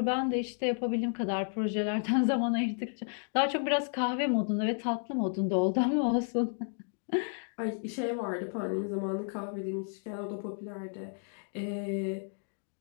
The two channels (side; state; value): right; silent; 56 dB below the other